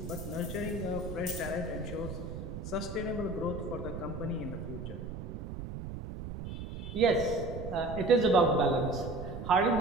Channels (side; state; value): right; noise; rumble, 8 dB below the sound